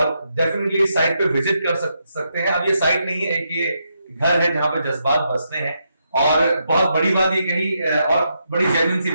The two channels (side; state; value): both; inverted; correlation -0.81